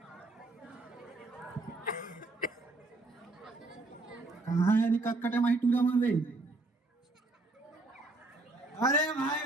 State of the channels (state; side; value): quieter; left; 3.1 dB